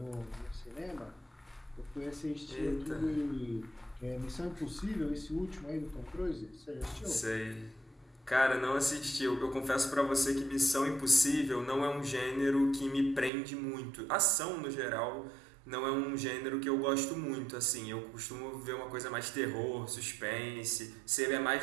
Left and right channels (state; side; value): drops out; left; at 13.3 s